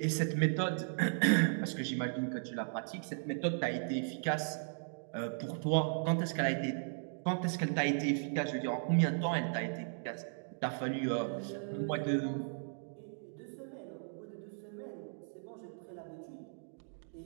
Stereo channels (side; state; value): left; silent; digital silence